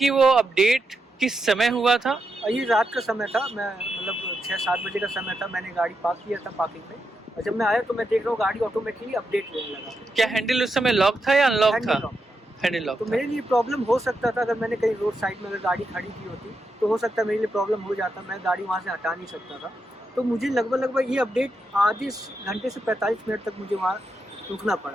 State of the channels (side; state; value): both; normal; correlation 0.85